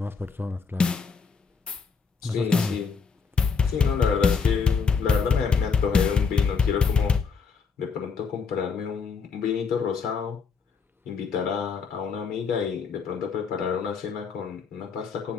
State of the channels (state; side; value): quieter; right; 5.5 dB